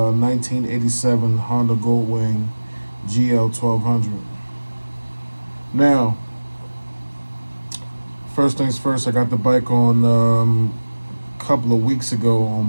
Honda Goldwing GL 1200. Now, first things first, I got the bike on a couple of weeks ago on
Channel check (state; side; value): inverted; both; correlation -1.00